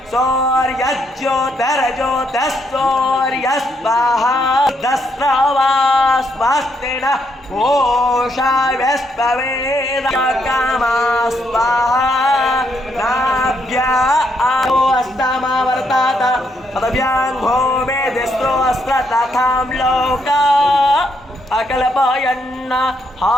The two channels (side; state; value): both; normal; correlation 0.75